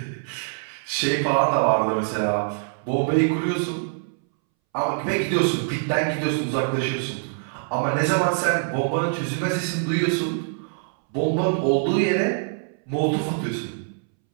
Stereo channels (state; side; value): silent; left; 62 dB below the other